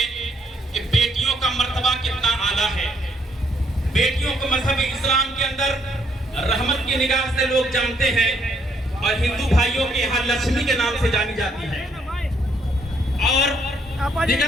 کہ بیٹیوں کا مرتبہ کتنا اعلیٰ ہے، بیٹیوں کو مذہب اسلام کے اندر رحمت کی نگاہ سے لوگ جانتے ہیں، اور ہندو بھائیوں کے یہاں لکشمی کے نام سے جانی جاتی ہے، اور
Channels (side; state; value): both; normal; correlation 0.70